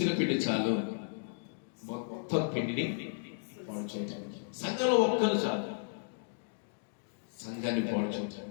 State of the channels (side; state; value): right; silent; digital silence